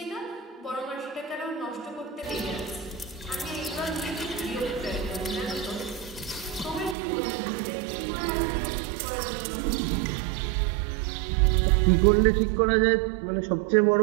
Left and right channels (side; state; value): left; drops out; at 7.0 s